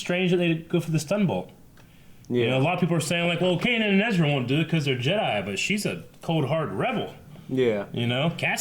that they go for the stun bolt. Yeah. You know, a lot of people are saying like, well, Kanan and Ezra won't do it because they're Jedi, but she's a cold-hearted rebel. Yeah. You know,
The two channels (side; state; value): both; identical; correlation 1.00